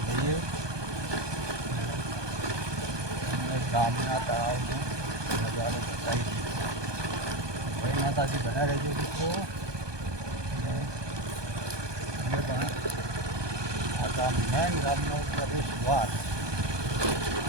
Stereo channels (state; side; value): late; left; 1.2 ms